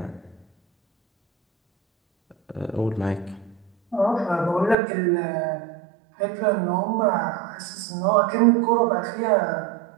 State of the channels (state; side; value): drops out; left; at 4.8 s